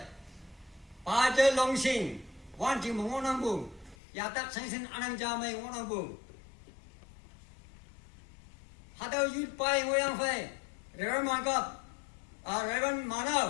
pa je longsing wan ji ngonang bu ya tak sengsen anang ja mai ngonang bu hada youth pai ngoyang phai Reverend Mangkap, Reverend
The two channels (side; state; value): right; drops out; at 4.0 s